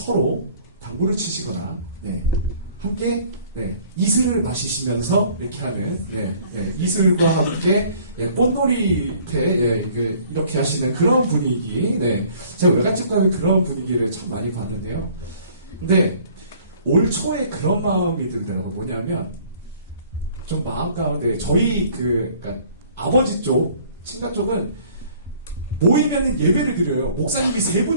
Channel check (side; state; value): both; inverted; correlation -0.55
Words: 당구를 치시거나 함께 이슬을 마시시면서 이렇게 하는 이슬과 함께 꽃놀이패 이렇게 하시는 그런 분위기. 제가 외갓집 가면 그런 분위기를 참 많이 봤는데요. 근데 올 초에 그런 마음이 들더라고요. 뭐냐면 좀 마음 가운데 저희 그러니까 아버지 쪽 친가 쪽은 모이면은 예배를 드려요. 목사님이